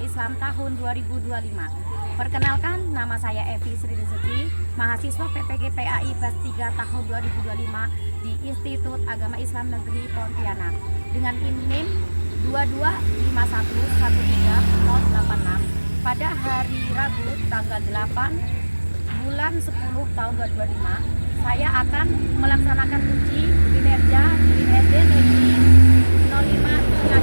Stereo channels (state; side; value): inverted; both; correlation -1.00